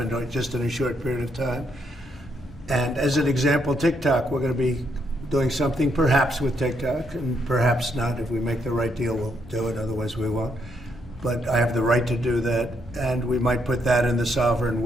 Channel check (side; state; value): both; normal; correlation 0.75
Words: just in a short period of time. And as an example, TikTok, we're going to be doing something perhaps with TikTok, and perhaps not. If we make the right deal, we'll do it, otherwise we won't. But I have the right to do that, and we might put that in the sovereign